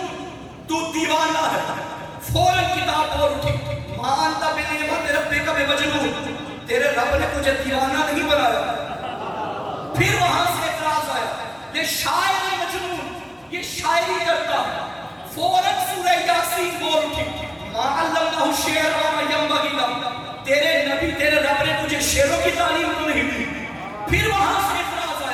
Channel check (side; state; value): both; identical; correlation 1.00